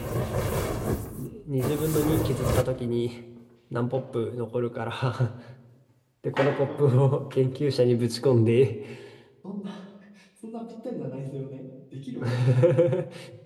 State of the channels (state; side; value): identical; both; correlation 1.00